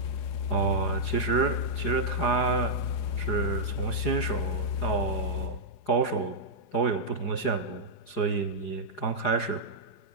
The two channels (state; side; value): late; right; 4.9 ms